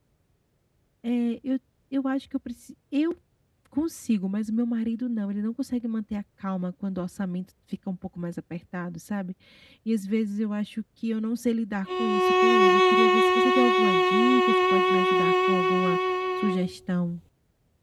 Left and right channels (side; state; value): both; identical; correlation 1.00